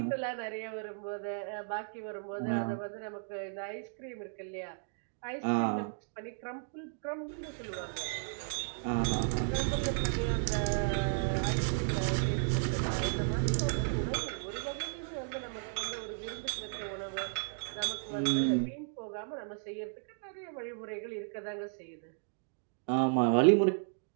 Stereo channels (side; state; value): left; silent; digital silence